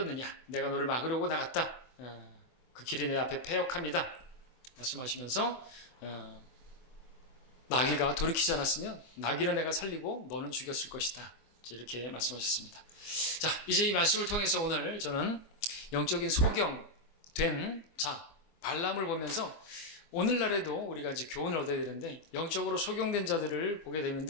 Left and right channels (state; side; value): late; right; 24 ms